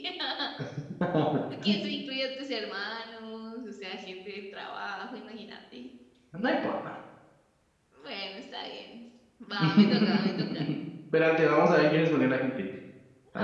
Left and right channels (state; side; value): identical; both; correlation 1.00